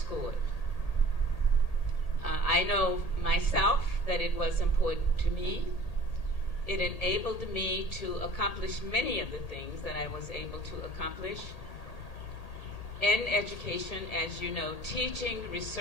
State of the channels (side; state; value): right; late; 1.8 ms